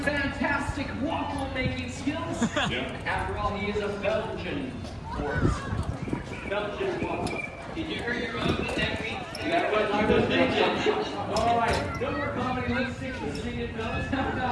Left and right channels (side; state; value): both; identical; correlation 1.00